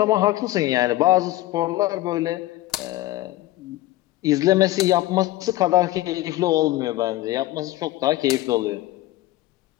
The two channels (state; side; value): quieter; right; 16.9 dB